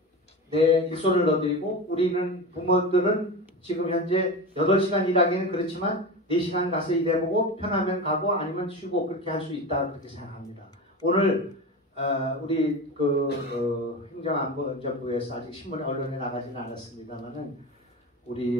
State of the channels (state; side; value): normal; both; correlation 0.26